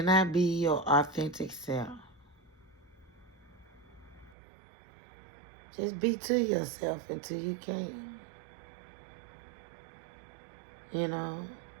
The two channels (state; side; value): drops out; left; at 4.4 s